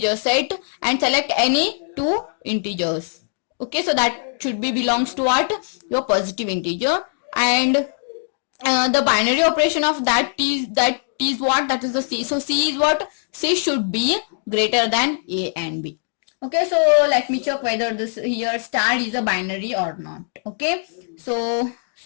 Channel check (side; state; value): right; silent; digital silence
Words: set and select any two integers. Okay, so that should be belongs to what? Your positive integer, and the binary operation of that is what? That is the C. So C is what? C should be greater than A and B. Okay, so let me check whether this here star is a binary or not. Okay, so